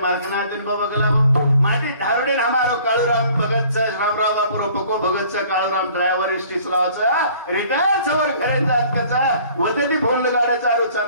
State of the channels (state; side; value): inverted; both; correlation -0.53